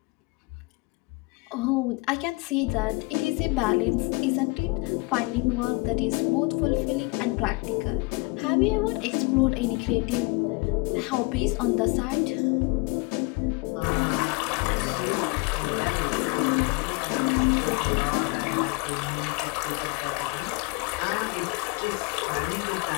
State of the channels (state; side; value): quieter; right; 27.5 dB